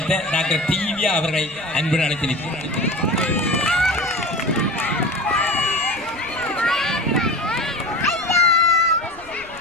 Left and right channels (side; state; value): left; noise; rumble, 23 dB below the sound